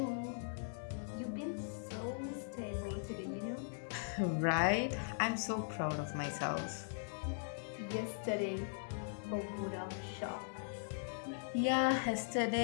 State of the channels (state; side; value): silent; right; digital silence